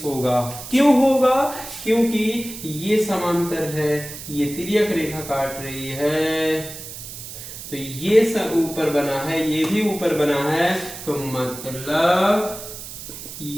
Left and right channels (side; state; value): right; noise; hiss, 11 dB below the sound